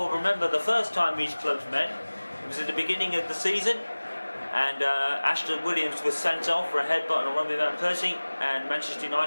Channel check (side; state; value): both; inverted; correlation -1.00